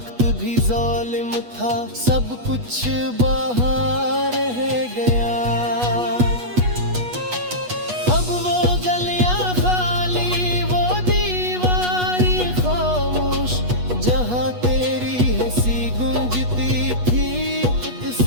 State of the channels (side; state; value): left; late; 8.2 ms